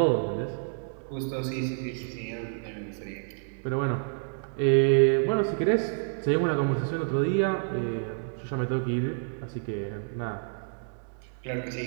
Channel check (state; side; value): silent; left; 59 dB below the other